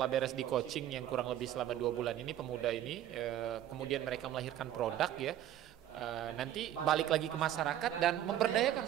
beres di coaching yang kurang lebih selama 2 bulan ini, pemuda ini kemudian mereka melahirkan produk ya. Nanti balik lagi ke masyarakat dan memberdayakan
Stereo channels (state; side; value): quieter; left; 11.7 dB